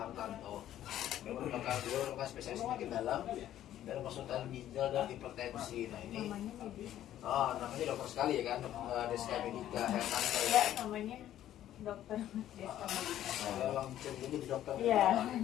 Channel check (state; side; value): quieter; right; 12.2 dB